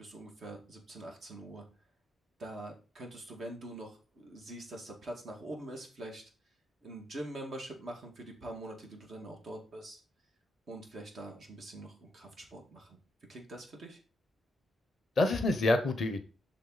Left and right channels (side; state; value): both; normal; correlation 0.80